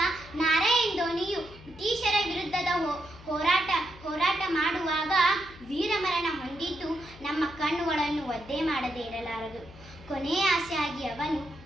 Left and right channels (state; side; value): noise; left; hum, 19 dB below the sound